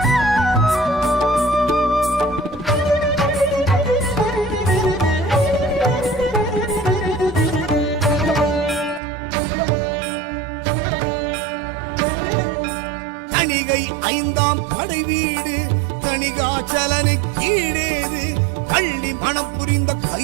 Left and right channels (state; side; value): drops out; left; at 9.0 s